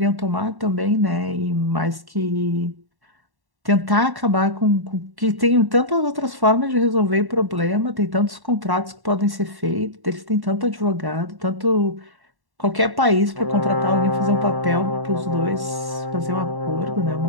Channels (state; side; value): late; left; 1.1 ms